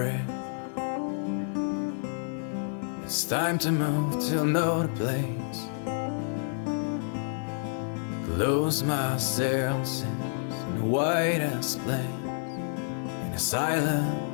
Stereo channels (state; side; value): silent; right; digital silence